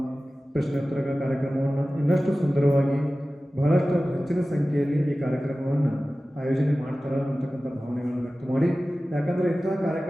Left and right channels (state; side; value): normal; both; correlation 0.96